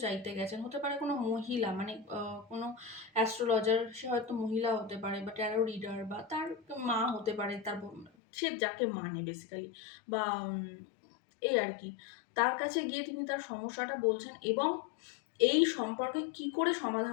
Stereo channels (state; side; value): drops out; right; at 8.1 s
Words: চাইতে গেছেন, হতে পারে কোনো মহিলা, মানে কোনো অ্যাস্ট্রোলজার, সে হয়তো মহিলা হতে পারে, বা ট্যারো রিডার, বা তার মা হতে পারে, তার সে যাকে মানে বেসিক্যালি, বা এই আর কি, তার কাছে গিয়ে তিনি তার সমস্যাটা বলছেন, এবং এই সম্পর্কে কি করে